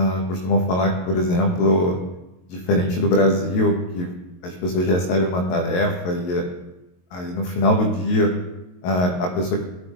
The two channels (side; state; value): right; late; 22 ms